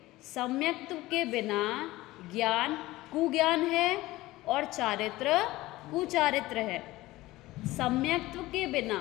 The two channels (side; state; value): right; quieter; 18.2 dB